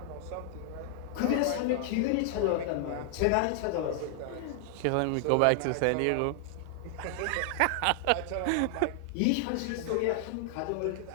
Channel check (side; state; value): both; different; correlation 0.00